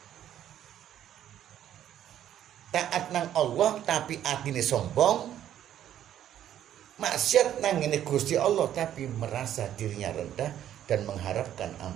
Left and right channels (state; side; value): quieter; left; 11.0 dB